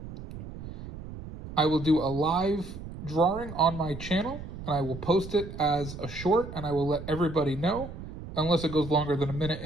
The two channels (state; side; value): noise; right; rumble, 11 dB below the sound